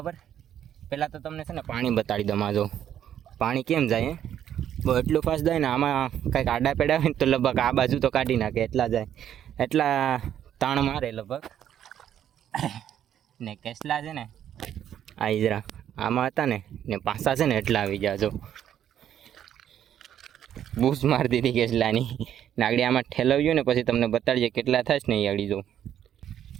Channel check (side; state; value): left; quieter; 10.3 dB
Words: પહેલાં તો તમને છે ને પાણી બતાડી દઉં. જો પાણી કેમ જાય બહુ એટલું ફાસ્ટ જાય ને, આમાં કંઈક આડા પેડા હોય ને તો લગભગ આ બાજુ તો કાઢી નાખે, એટલા જાય, એટલા તાણ મારે લગભગ. ને કેટલા છે ને આ ઈજરા આમાં હતા ને પાછા છે ને એટલા આવી ગયા. જો બૂસ મારી દીધી કેટલાની નાગડી, આમાં ઠેલવ્યું ને પછી તમને બતાડીએ કેટલા થાય ને એ અડી. જો